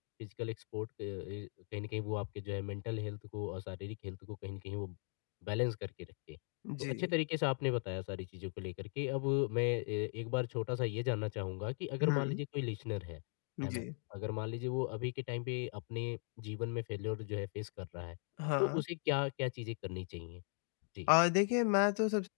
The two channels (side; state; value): right; silent; 52 dB below the other